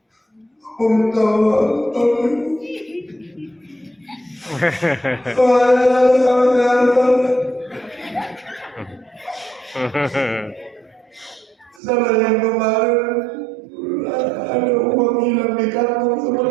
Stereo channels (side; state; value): left; drops out; at 11.8 s